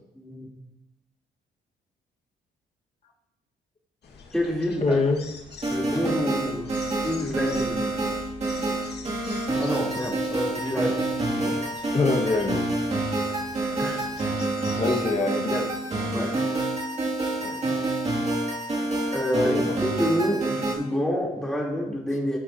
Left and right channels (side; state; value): both; normal; correlation 0.74